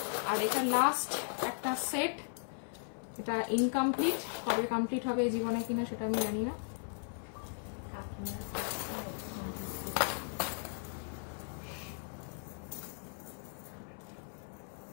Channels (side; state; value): right; silent; 53 dB below the other